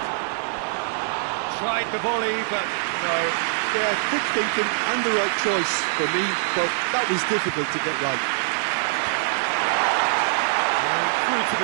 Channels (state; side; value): silent; left; digital silence